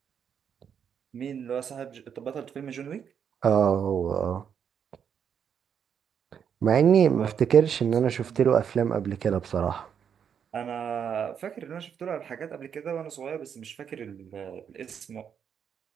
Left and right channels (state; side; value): quieter; left; 7.8 dB